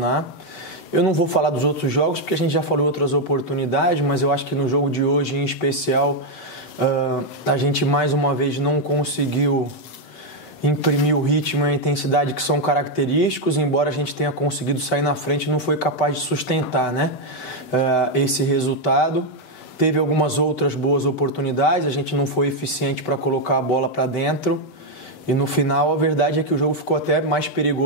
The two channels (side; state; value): right; late; 7.9 ms